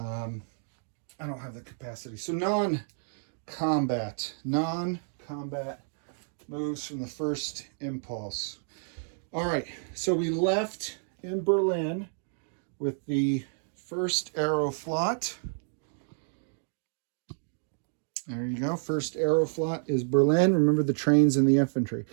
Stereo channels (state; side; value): silent; left; digital silence